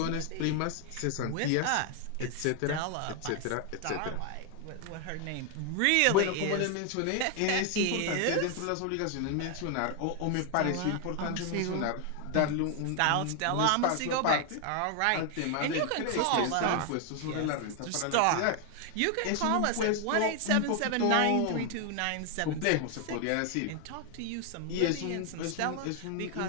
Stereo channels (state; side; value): different; both; correlation 0.00